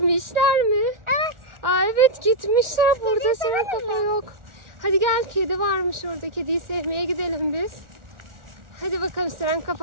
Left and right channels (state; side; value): late; left; 1.4 ms